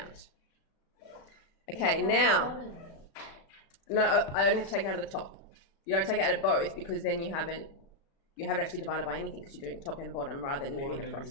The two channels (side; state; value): right; late; 36 ms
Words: Okay, now, no, I only have to take it out of the top. You don't take it out of both because then you haven't actually divided by anything because you're doing top and bottom rather than moving